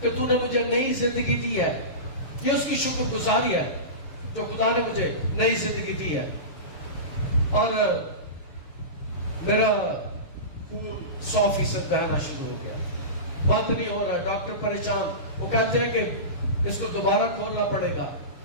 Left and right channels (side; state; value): right; late; 6.8 ms